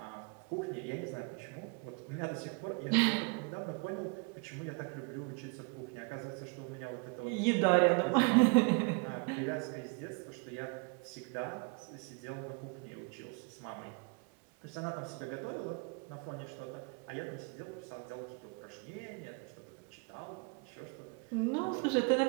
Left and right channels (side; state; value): left; quieter; 32.3 dB